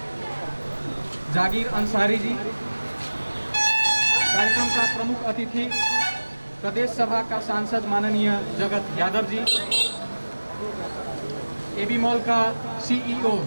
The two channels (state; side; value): inverted; both; correlation -1.00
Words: जागीर अंसारी जी, कार्यक्रमका प्रमुख अतिथि प्रदेश सभा का सांसद माननीय जगत यादव जी, एबी मॉल का सीईओ